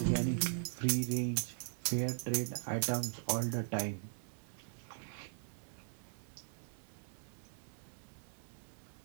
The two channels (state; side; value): silent; left; 51 dB below the other